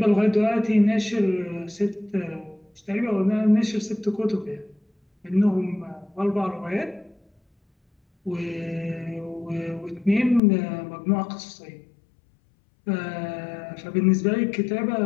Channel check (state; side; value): drops out; right; at 10.4 s